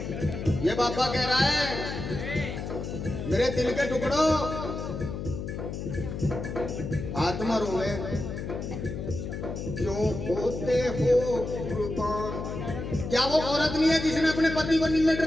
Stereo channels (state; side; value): noise; left; hum, 6 dB below the sound